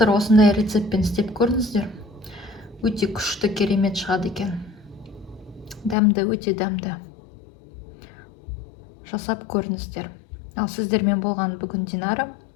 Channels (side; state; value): right; drops out; at 6.0 s